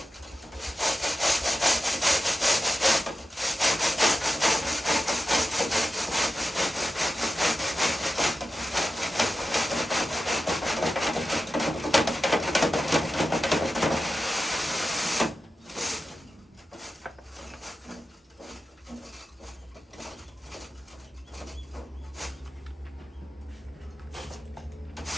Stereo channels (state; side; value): normal; both; correlation 0.91